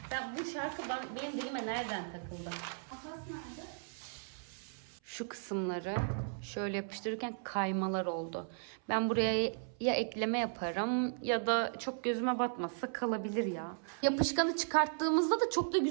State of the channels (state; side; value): silent; left; 54 dB below the other